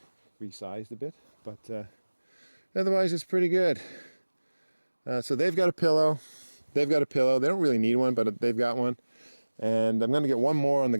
resized a bit, but. Otherwise, it's pretty good. So they've got a pillow. They don't really need one, but they've got one. And I'm going to get one more on the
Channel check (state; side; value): inverted; both; correlation -1.00